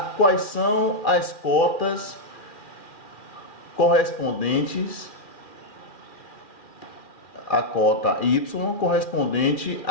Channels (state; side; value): late; right; 2.4 ms